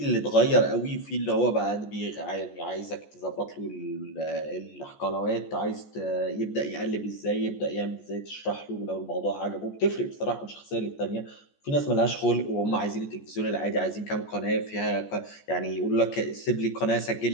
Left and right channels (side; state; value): right; late; 14 ms